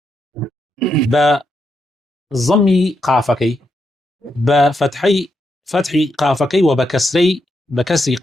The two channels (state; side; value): normal; both; correlation 0.82